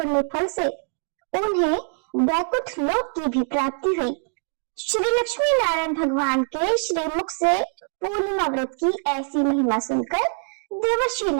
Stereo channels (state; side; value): silent; left; 63 dB below the other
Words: फल से उन्हें वैकुंठ लोक की भी प्राप्ति हुई। श्री लक्ष्मी नारायण भगवान के श्रीमुख से पूर्णिमा व्रत की ऐसी महिमा सुनकर देवर्षि